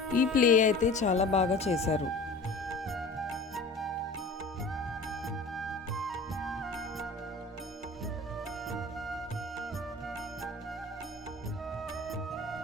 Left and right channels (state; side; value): quieter; right; 3.1 dB